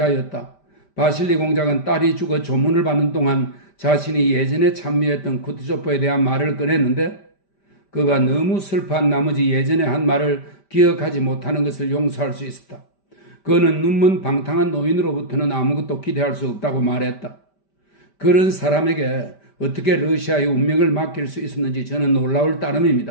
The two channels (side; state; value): right; late; 5.1 ms